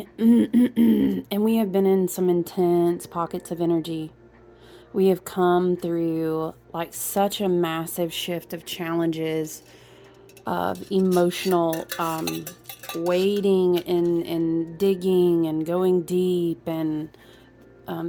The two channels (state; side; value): identical; both; correlation 1.00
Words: and we have been in some intense pockets of energy. We have come through like such a massive shift of challenges, of emotional wading and digging and going deep and